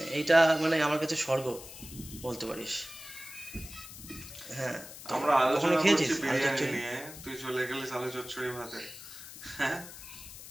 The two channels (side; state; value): left; noise; hiss, 14 dB below the sound